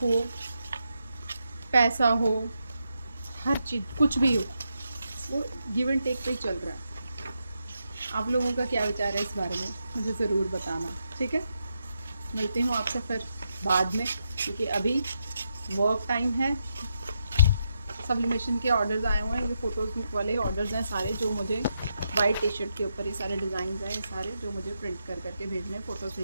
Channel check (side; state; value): both; inverted; correlation -0.83